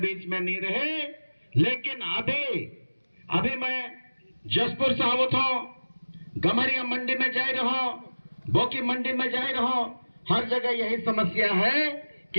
में नहीं रहे। लेकिन अभी मैं जसपुर से आवत हूं, गमरिया मंडी में जा रहा हूं, बोकी मंडी में जा रहा हूं, हर जगह यही समस्या है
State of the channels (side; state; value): both; inverted; correlation -1.00